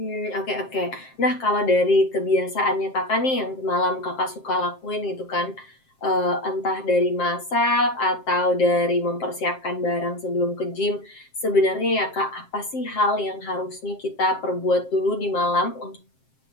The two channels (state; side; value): late; right; 7.5 ms